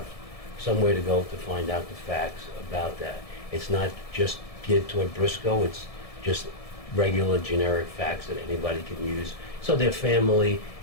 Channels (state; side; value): late; right; 1.7 ms